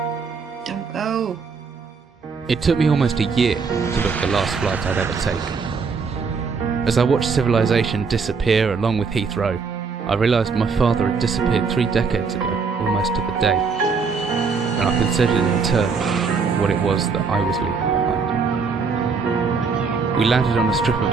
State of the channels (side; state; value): left; quieter; 5.1 dB